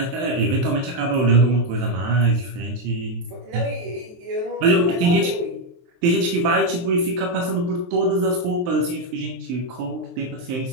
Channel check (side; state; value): left; late; 23 ms